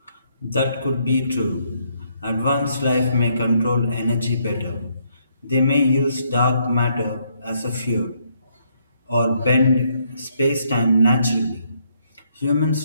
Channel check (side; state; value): both; inverted; correlation -0.73